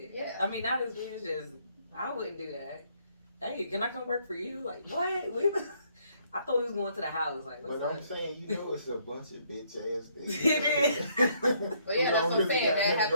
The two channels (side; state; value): both; inverted; correlation -0.68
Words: Yeah. I mean, not as weird as just I wouldn't do that. Hey, can I come work for you? Like, what? I thought we was going to the house. Like, what's But up? I'm saying, it's a bunch of bitch ass things. It is. But yeah, that's what I'm saying. That